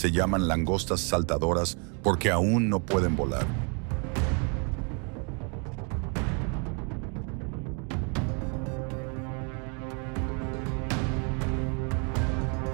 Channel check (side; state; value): left; quieter; 37.0 dB